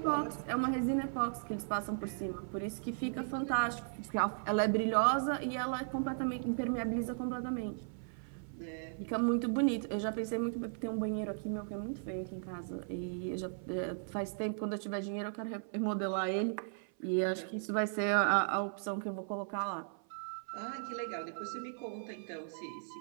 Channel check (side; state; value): left; silent; 53 dB below the other